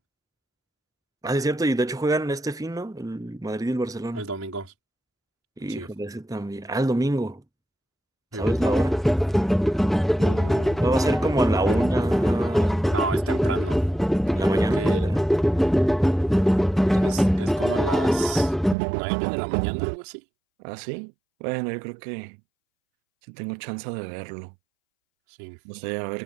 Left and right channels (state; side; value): drops out; left; at 18.8 s